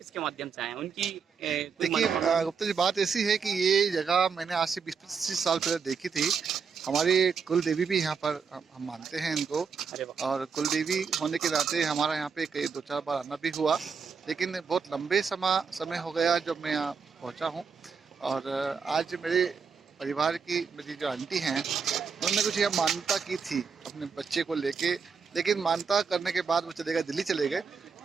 माध्यम से आए हैं, उनकी देखिए गुप्ता जी, बात ऐसी है कि ये जगह मैंने आज से 20-25 साल पहले देखी थी। हमारी कुल देवी भी यहाँ पर हम मानते हैं इनको, और कुल देवी होने के नाते हमारा यहाँ पे कई 2-4 बार आना भी हुआ, लेकिन बहुत लंबे समय हो गया जब मैं यहाँ पहुँचा हूँ। और आज मेरे परिवार की मेरी जो आंटी हैं, उन्होंने कुछ यहाँ मान्यता की थी अपने बच्चे को लेके, लेकिन मान्यता करने के बाद वो दिल्ली चले गए।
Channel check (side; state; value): left; quieter; 5.8 dB